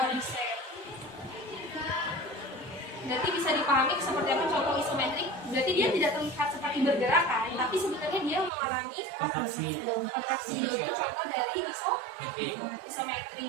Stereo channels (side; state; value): left; drops out; at 8.5 s